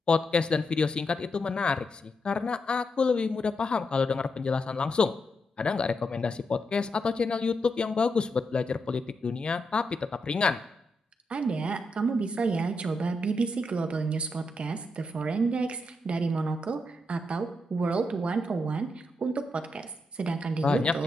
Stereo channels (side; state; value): both; normal; correlation 0.83